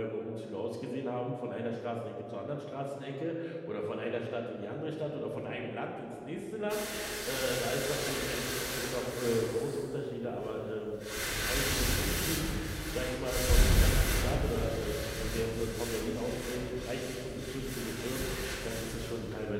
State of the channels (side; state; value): both; identical; correlation 1.00